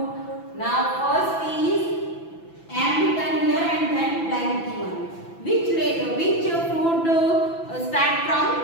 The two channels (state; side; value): late; right; 6.0 ms